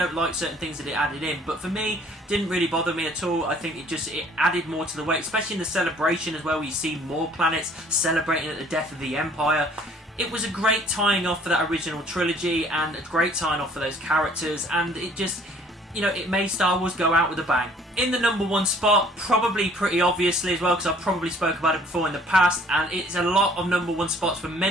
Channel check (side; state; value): both; normal; correlation 0.57